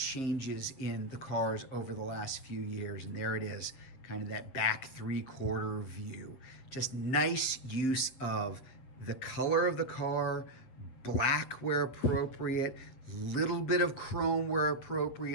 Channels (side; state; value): right; late; 7.6 ms